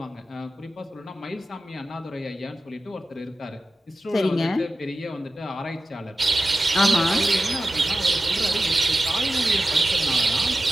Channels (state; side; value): normal; both; correlation 0.93